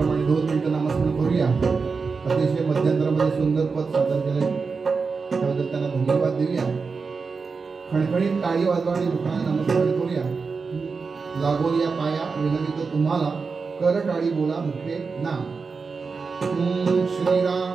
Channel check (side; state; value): left; quieter; 4.8 dB